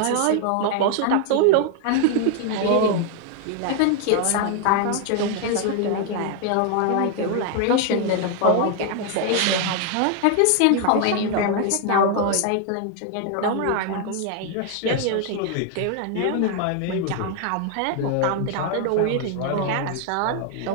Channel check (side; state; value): both; different; correlation 0.00